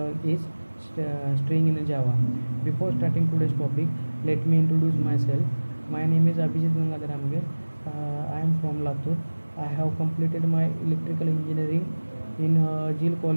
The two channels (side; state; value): both; inverted; correlation -1.00